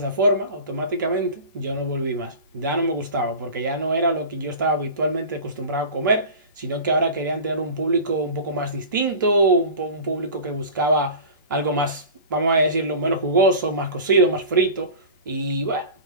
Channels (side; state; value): both; inverted; correlation -0.35